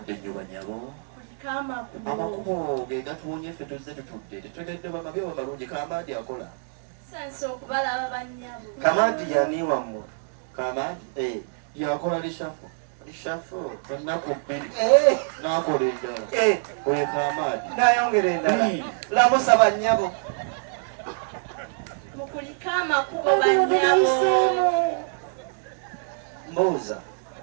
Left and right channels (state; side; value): silent; left; digital silence